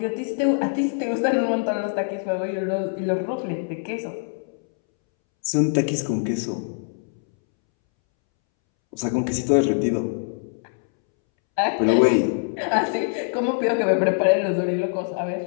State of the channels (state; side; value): silent; right; 63 dB below the other